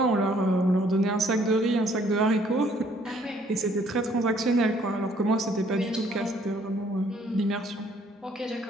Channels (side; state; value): both; normal; correlation 0.63